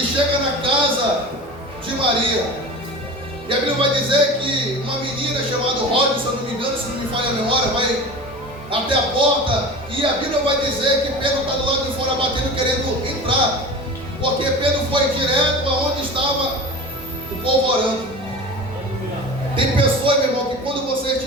na casa de Maria. E a Bíblia vai dizer que uma menina chamada Rod, se eu não me engano, se não me falha a memória, vai até a porta. E a Bíblia vai dizer que Pedro está do lado de fora batendo, querendo entrar. Porque Pedro foi direto aonde estava o povo orando. Tem pessoas, meu irmão, que quando você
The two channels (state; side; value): normal; both; correlation 0.34